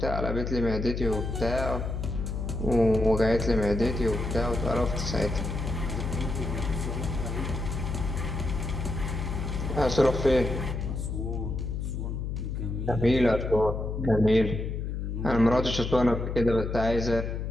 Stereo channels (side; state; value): left; noise; hum, 3 dB below the sound